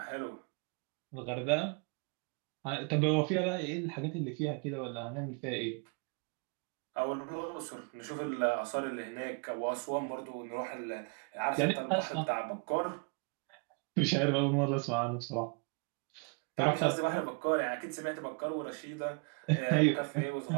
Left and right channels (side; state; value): left; quieter; 34.8 dB